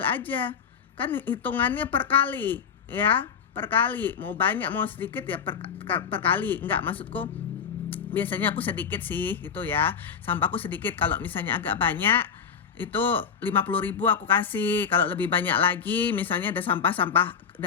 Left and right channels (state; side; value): quieter; right; 6.9 dB